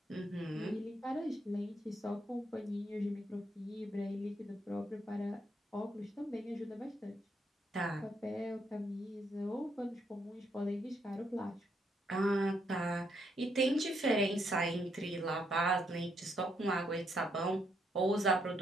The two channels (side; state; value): both; normal; correlation 0.75